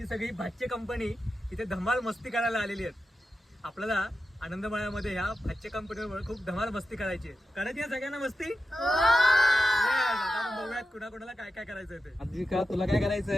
सगळी भाच्चे कंपनी इथे धमाल मस्ती करायला आलेली आहेत। आपल्याला आनंदमाळ्यामध्ये ह्या भाच्चे कंपनीवर खूप धमाल मस्ती करायची आहे। करायची आहे सगळ्यांना मस्ती? आता बघूयात कुणाकुणाला काय काय करायचं ते। आद्विका तुला काय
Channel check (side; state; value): both; normal; correlation 0.90